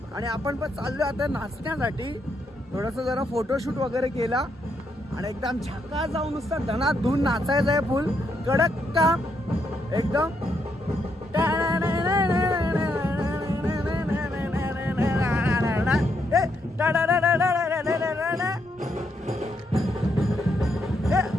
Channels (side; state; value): both; normal; correlation 0.77